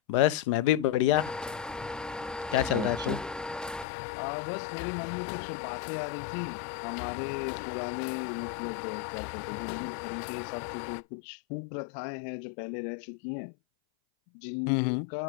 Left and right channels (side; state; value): right; drops out; at 3.9 s